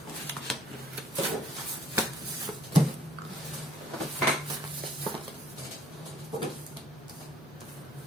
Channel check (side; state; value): both; normal; correlation 0.62